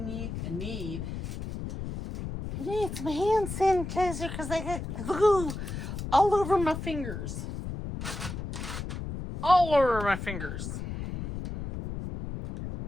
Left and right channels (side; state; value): left; noise; rumble, 6 dB below the sound